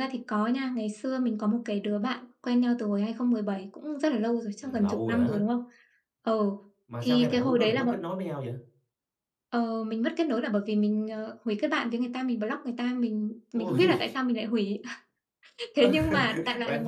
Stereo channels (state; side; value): identical; both; correlation 1.00